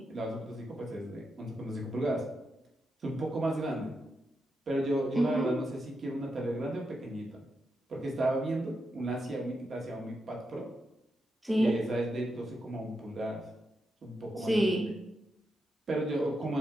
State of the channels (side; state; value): both; normal; correlation 0.85